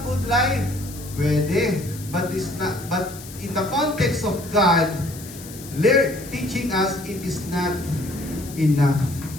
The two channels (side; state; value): left; noise; hiss, 16 dB below the sound